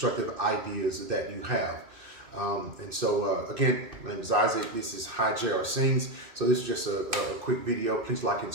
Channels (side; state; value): left; late; 2.6 ms